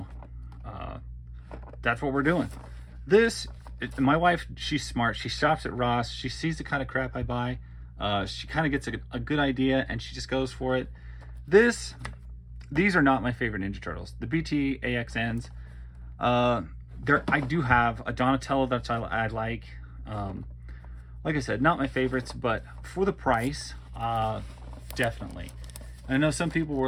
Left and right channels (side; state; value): both; identical; correlation 1.00